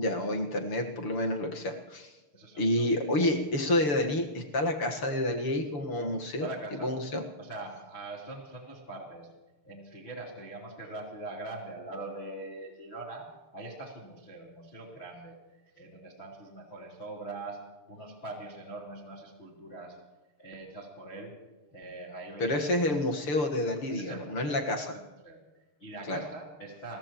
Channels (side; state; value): right; late; 6.9 ms